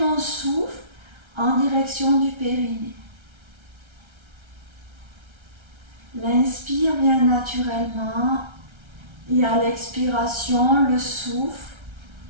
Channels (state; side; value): late; left; 1.3 ms